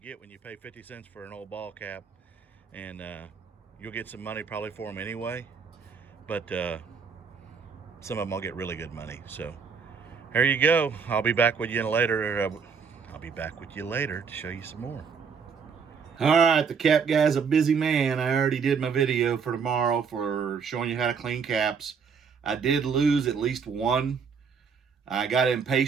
get when you pay 50 cents for an old ball cap, and you'll get some money probably for them anyway, but some of them will get really good money. So there you go. I'll be back with you later. I'll be back with you later to show you some more. All right, the cap guy's a busy man. I already did my video for tomorrow for showing you how to clean caps. I did lose at least one I got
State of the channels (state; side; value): quieter; left; 6.0 dB